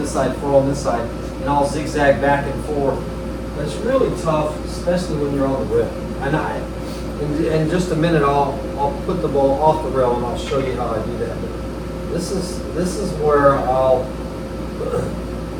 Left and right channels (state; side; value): identical; both; correlation 1.00